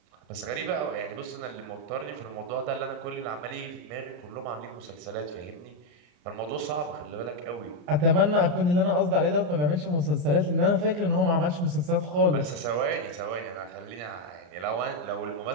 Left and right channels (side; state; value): left; late; 34 ms